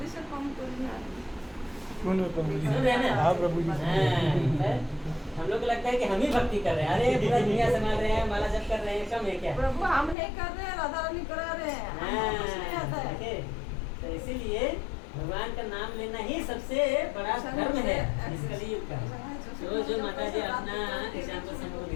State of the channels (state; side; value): drops out; right; at 10.2 s